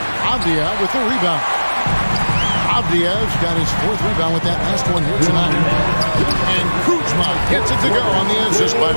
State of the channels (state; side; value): inverted; both; correlation -1.00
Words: Avdia with the rebound. Avdia's got his 4th rebound with that last one here tonight. And Kuzma gets it to go on the assist by